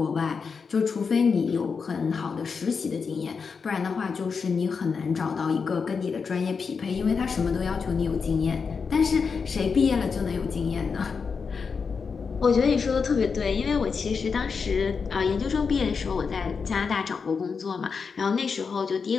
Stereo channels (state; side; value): quieter; right; 5.5 dB